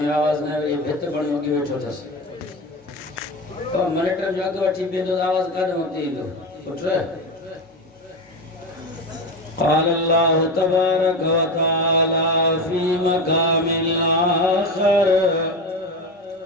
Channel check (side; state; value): both; normal; correlation 0.20